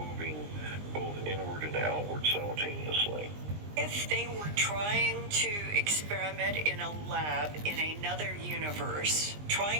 both inward and outward simultaneously. If they were trying to experiment in a lab in another universe,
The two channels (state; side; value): late; left; 20 ms